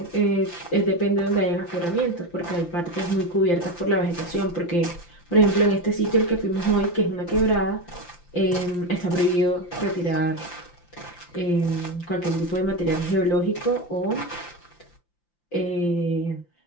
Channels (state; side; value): late; right; 5.8 ms